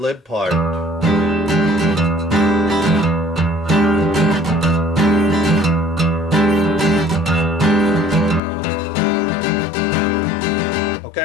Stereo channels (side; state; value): right; drops out; at 8.4 s